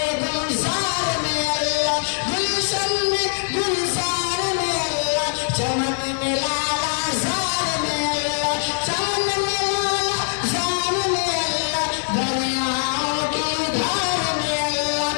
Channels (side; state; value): right; silent; 64 dB below the other